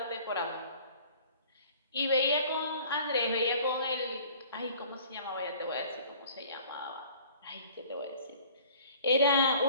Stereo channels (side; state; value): both; inverted; correlation -0.51